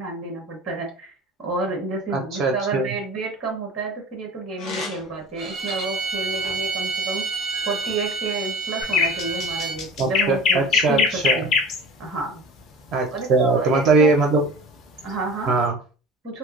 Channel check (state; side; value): normal; both; correlation 0.39